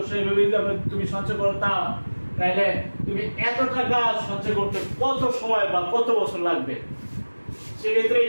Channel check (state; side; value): inverted; both; correlation -1.00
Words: এভাবে তুমি সঞ্চয় করতাম, তাহলে তুমি এত টাকা সঞ্চয় করতে কত সময় বা কত বছর লাগবে। সেক্ষেত্রে